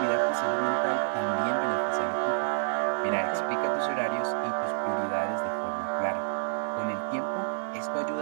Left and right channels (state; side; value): silent; left; digital silence